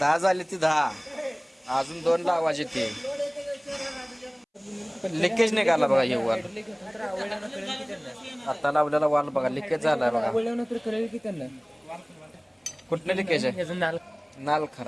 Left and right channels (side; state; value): both; identical; correlation 1.00